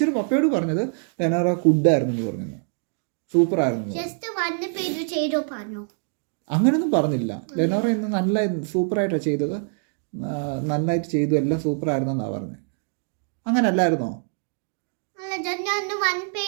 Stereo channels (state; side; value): silent; left; 57 dB below the other